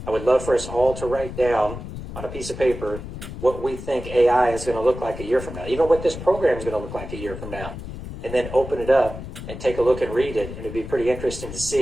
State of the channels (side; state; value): left; noise; rumble, 10 dB below the sound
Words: I would love for us all to write down on a piece of paper what we think AI is going to look like a year from now, even what this program is going to look like a year from now, and then open it up and take a look and read it. And it'd be pretty interesting to